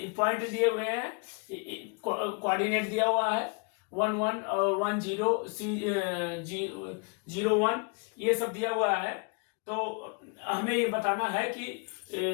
दिए हुए हैं, कोऑर्डिनेट दिया हुआ है 1 1 और 1 0 0 1 ये सब दिया हुआ है। तो हमें ये बताना है कि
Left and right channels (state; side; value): quieter; right; 33.0 dB